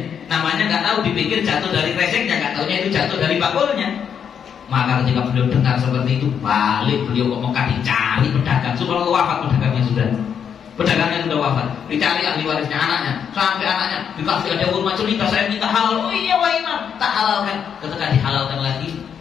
Namanya nggak tahu, dipikir jatuh dari reseknya, nggak taunya itu jatuh dari bakulnya. Maka ketika beliau dengar seperti itu, balik beliau ke Mekah dicari pedagang. Subhanallah, wafat pedagangnya sudah. Pedagangnya sudah wafat, dicari ahli warisnya anaknya, sampai anaknya dikasih ada kurma cerita, saya minta halal. Oh iya wah imam, tak halalkan. Ketika dihalalkan lagi,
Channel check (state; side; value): quieter; right; 7.8 dB